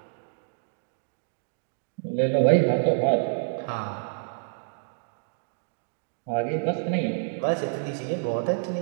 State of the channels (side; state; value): left; silent; 59 dB below the other